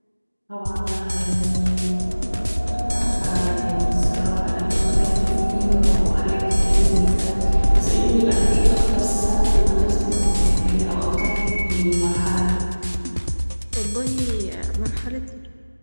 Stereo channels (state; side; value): inverted; both; correlation -1.00